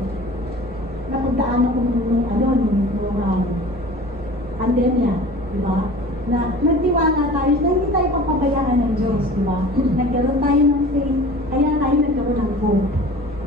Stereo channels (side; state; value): both; normal; correlation 0.41